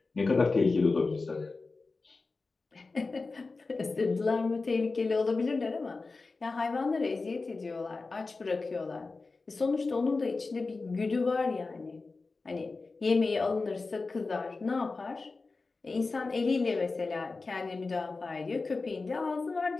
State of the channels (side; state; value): right; quieter; 3.9 dB